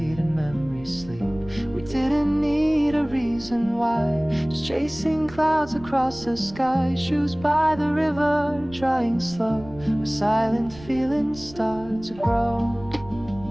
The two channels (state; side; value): noise; right; rumble, 18 dB below the sound